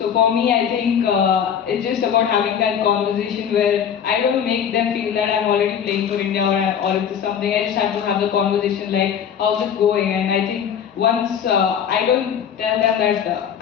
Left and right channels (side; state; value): right; quieter; 8.2 dB